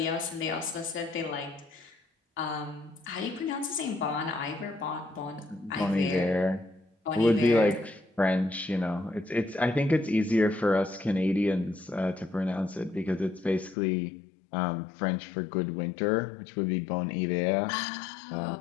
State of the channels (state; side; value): drops out; right; at 13.8 s